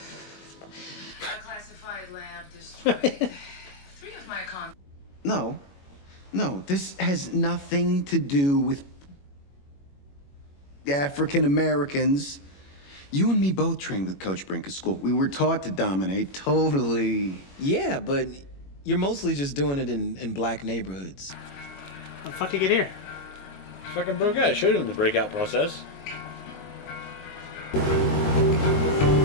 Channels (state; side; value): late; right; 21 ms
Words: Classified lab destroyed. 3 of my No, this has nothing to do with African Americans. You and me both trained with Coach Brink at school. We were taught to dominate, totally. Yeah, but you're mostly just doing it in black neighborhoods. How the fuck did you get here? Fucking broke out. I showed him the breakout process.